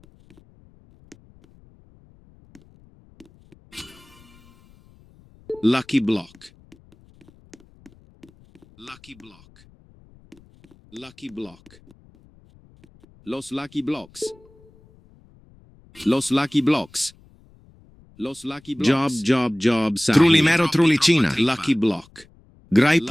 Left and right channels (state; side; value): noise; left; rumble, 28 dB below the sound